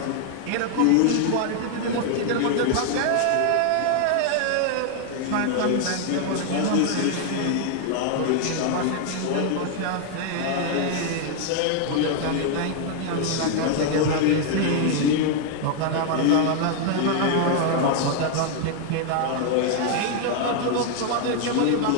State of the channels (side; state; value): both; different; correlation 0.00